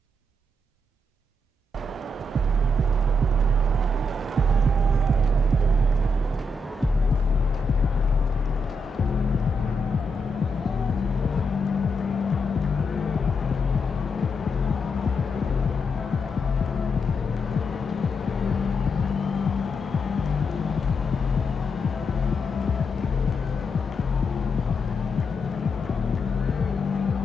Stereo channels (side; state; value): both; normal; correlation 0.82